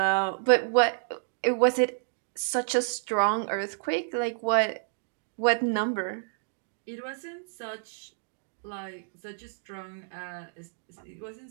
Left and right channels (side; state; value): left; silent; digital silence